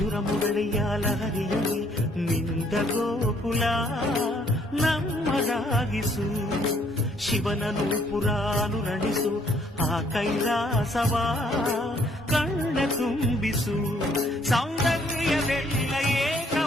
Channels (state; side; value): normal; both; correlation 0.65